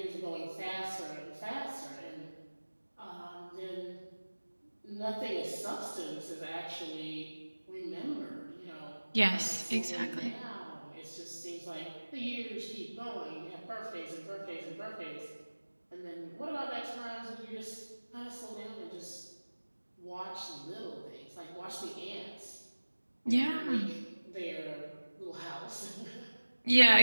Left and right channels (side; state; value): both; inverted; correlation -1.00